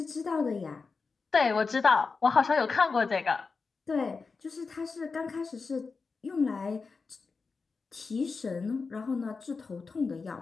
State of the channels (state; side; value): quieter; right; 4.6 dB